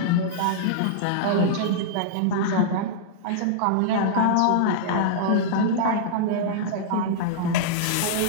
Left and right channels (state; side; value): different; both; correlation -0.02